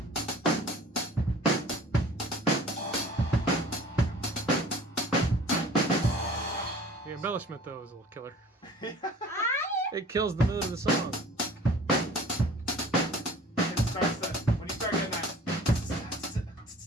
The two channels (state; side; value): normal; both; correlation 0.47